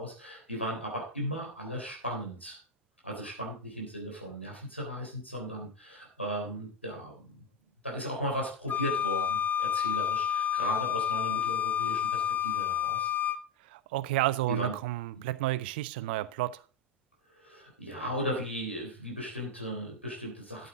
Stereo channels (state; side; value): normal; both; correlation 0.08